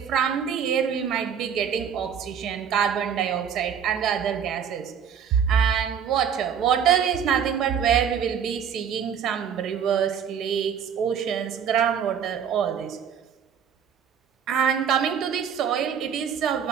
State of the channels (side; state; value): left; quieter; 7.9 dB